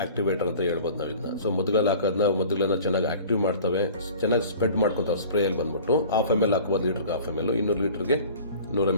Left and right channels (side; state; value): both; inverted; correlation -0.44